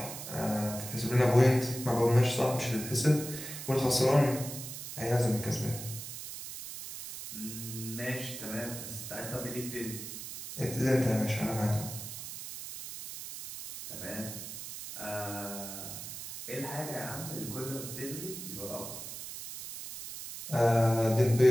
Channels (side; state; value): right; noise; hiss, 9 dB below the sound